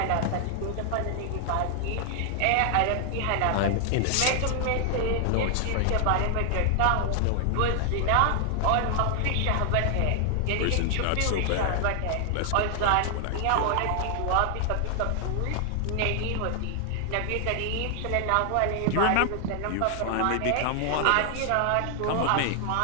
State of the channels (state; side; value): different; both; correlation 0.00